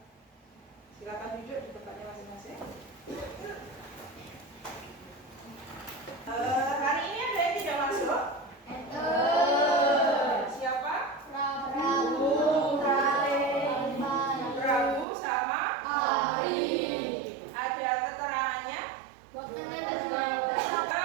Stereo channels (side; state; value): left; drops out; at 15.1 s